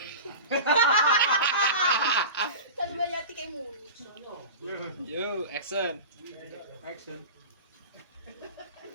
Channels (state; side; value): inverted; both; correlation -0.32